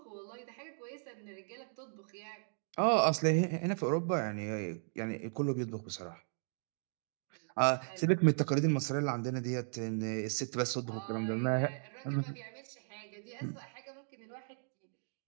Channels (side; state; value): left; silent; digital silence